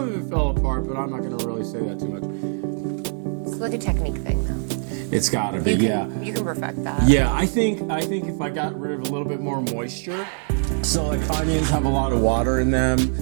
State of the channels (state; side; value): silent; left; 63 dB below the other